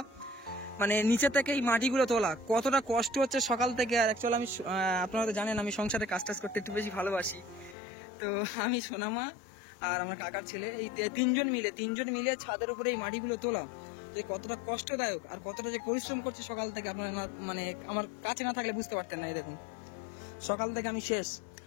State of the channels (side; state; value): right; drops out; at 7.8 s